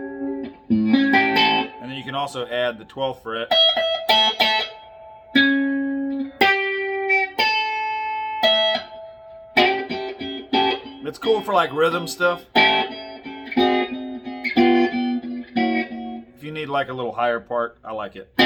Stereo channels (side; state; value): both; identical; correlation 1.00